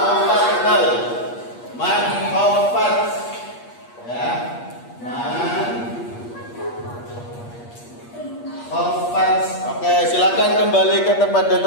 man khawfat. Ya. Oke, silakan kembali ke tempat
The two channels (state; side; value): late; right; 8.4 ms